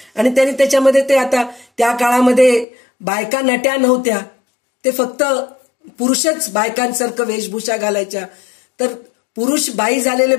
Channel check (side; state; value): right; drops out; at 2.7 s